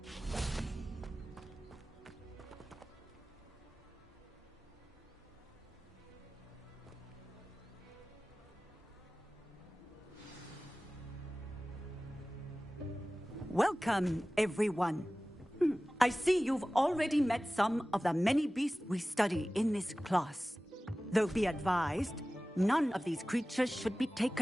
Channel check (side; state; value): both; normal; correlation 0.97